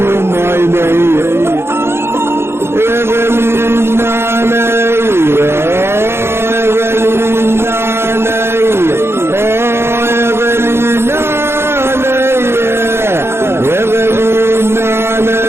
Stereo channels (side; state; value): left; late; 0.12 ms